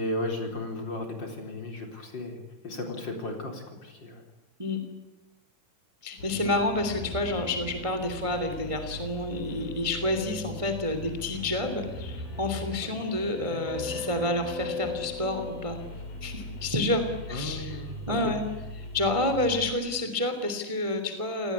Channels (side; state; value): left; late; 1.5 ms